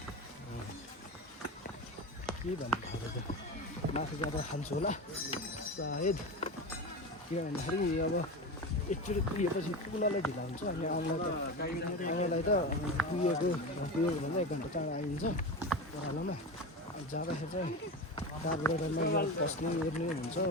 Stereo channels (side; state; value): both; normal; correlation 0.24